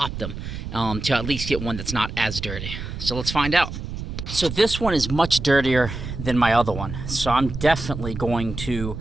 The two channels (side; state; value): right; noise; rumble, 7 dB below the sound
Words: them to at least get one that's not as dirty. So let's find out. So this one is much dirtier than my other one. So I'm definitely going to